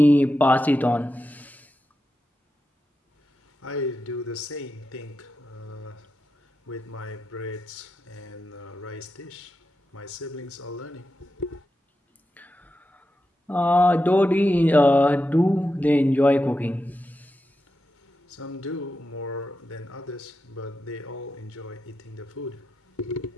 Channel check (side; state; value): both; normal; correlation 0.89